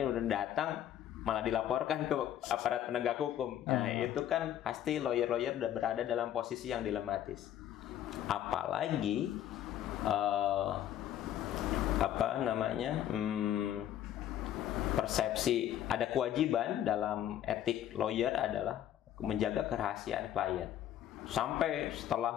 udah datang malah dilaporkan ke aparat penegak hukum. Nah, itu kan pasti lawyer-lawyer udah berada dalam posisi yang dilematis. Apalagi persepsi ada kewajiban dalam etik lawyer adalah menjaga kerahasiaan klien sampai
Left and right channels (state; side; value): quieter; right; 11.3 dB